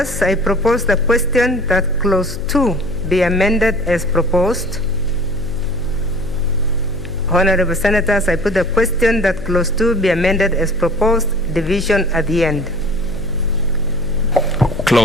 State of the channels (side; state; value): left; noise; hum, 11 dB below the sound